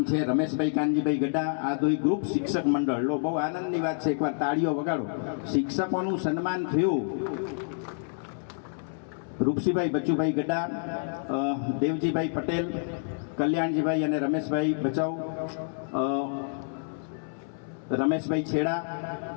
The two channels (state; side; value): silent; right; 59 dB below the other